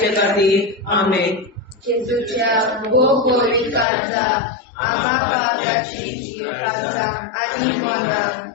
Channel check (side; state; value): right; drops out; at 3.9 s